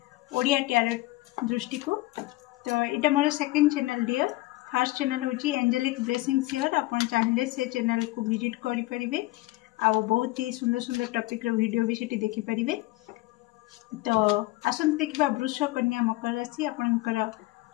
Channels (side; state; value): right; quieter; 19.6 dB